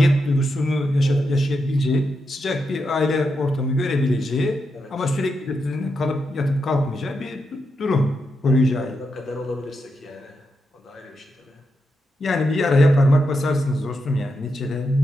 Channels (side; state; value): both; normal; correlation 0.85